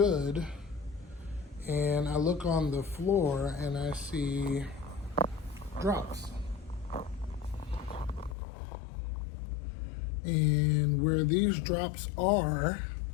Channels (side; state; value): right; drops out; at 8.3 s